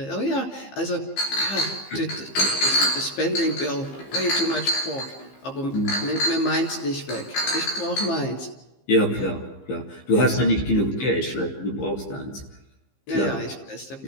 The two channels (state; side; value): late; right; 15 ms